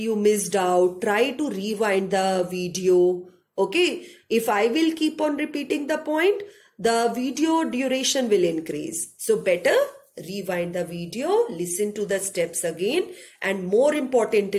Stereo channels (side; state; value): both; identical; correlation 1.00